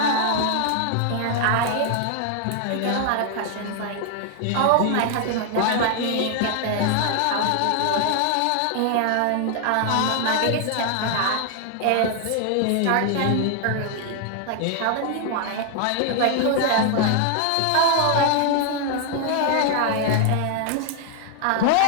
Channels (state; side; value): different; both; correlation 0.00